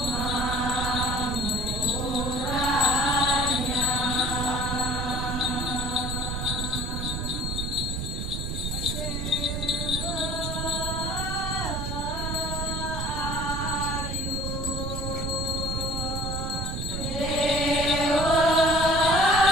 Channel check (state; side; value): noise; right; rumble, 3 dB below the sound